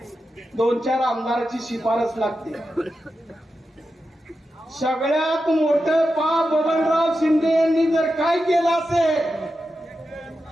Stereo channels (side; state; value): both; normal; correlation 0.90